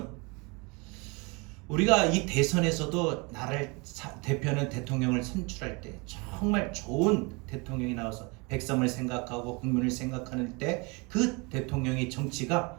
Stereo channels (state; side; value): quieter; left; 28.9 dB